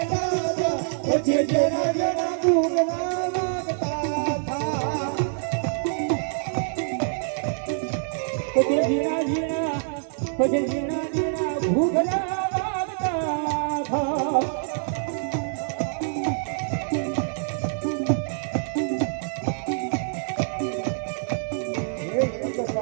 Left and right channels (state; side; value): silent; left; digital silence